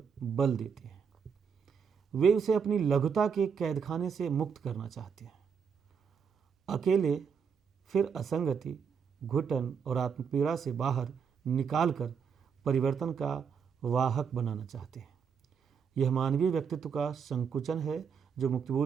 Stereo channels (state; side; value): quieter; left; 6.5 dB